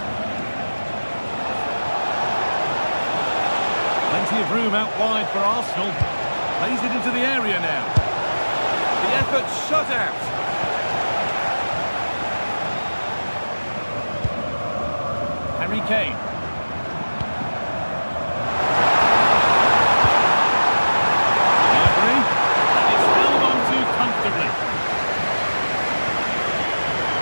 Plenty of room out wide for Arsenal. Plays it into the area now. The effort shut out. Harry Kane. Gnabry, and it's held on to comfortably.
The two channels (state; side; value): inverted; both; correlation -1.00